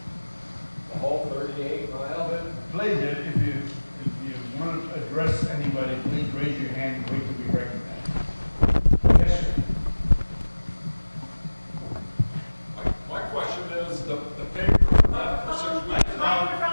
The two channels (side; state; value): both; inverted; correlation -1.00